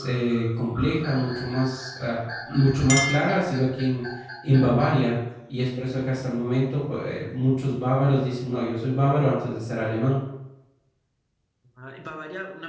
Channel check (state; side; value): identical; both; correlation 1.00